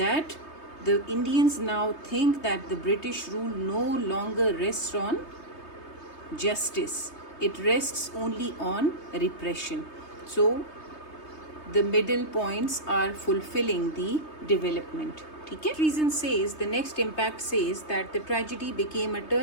the Indians now think that the British rule no longer rests on justice, it rests only on repression. So the middle points are fulfilling the development. Okay? Reason says, the next impact says that the tragedy became a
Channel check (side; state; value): right; late; 3.2 ms